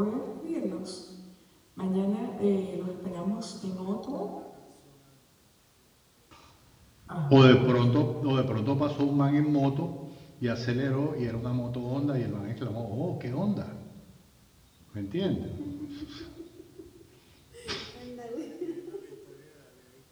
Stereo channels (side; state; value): both; identical; correlation 1.00